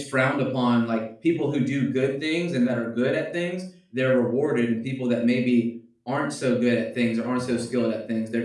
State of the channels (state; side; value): identical; both; correlation 1.00